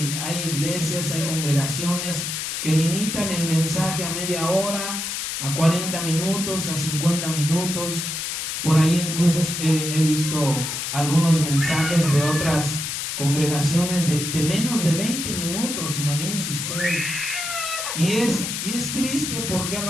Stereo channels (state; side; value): noise; left; hiss, 3 dB below the sound